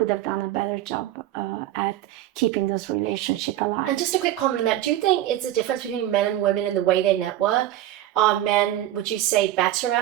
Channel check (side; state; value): left; quieter; 13.4 dB